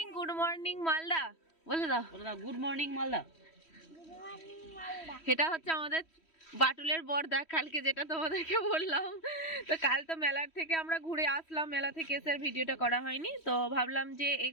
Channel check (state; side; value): late; right; 3.1 ms